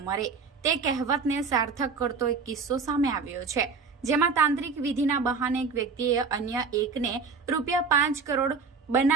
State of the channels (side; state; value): left; quieter; 5.0 dB